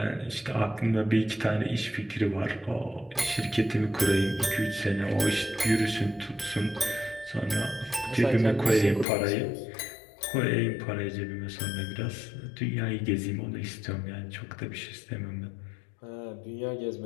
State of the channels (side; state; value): right; drops out; at 9.1 s